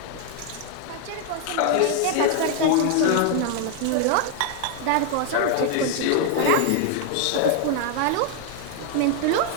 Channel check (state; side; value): different; both; correlation 0.00